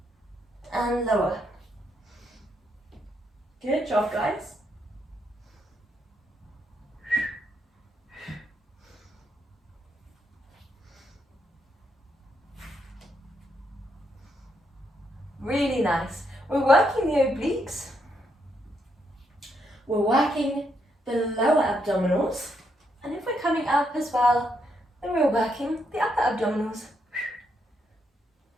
and lower. Good job, guys. Really nice. We're working the obliques. We're working the lower abdominals. And if we're coming up as well, then we're working the upper abdominals.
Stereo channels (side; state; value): both; normal; correlation 0.77